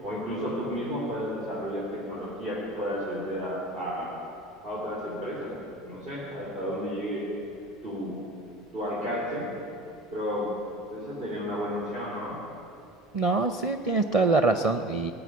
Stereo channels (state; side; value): normal; both; correlation 0.38